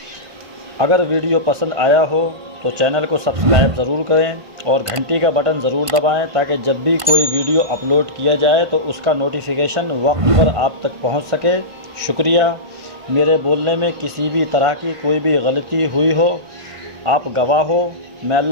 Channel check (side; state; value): left; late; 1.5 ms